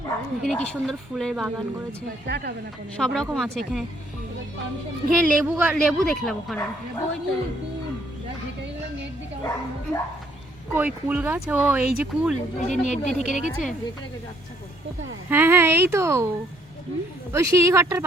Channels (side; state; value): both; normal; correlation 0.66